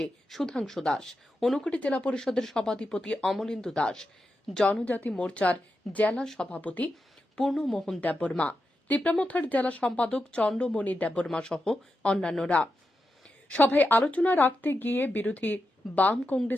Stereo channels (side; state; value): both; normal; correlation 0.88